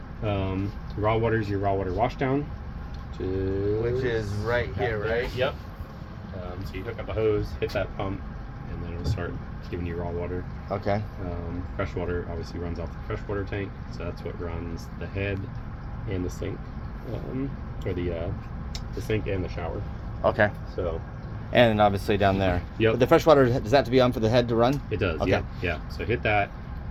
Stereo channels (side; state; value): both; identical; correlation 1.00